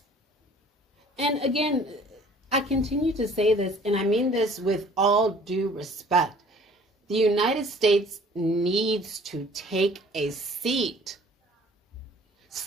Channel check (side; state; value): both; normal; correlation 0.52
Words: And again, I continue to say this, and I mean this with all due respect. The United States needs to take a seat.